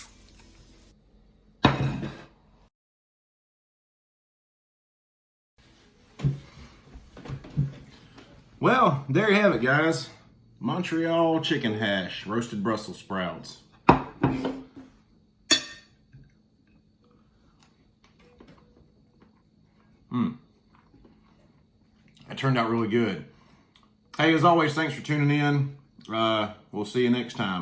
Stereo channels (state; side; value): identical; both; correlation 1.00